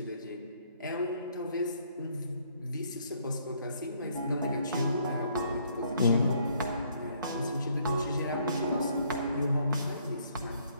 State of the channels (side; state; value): both; inverted; correlation -0.66